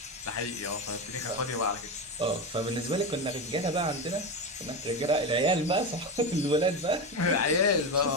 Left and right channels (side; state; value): both; normal; correlation 0.17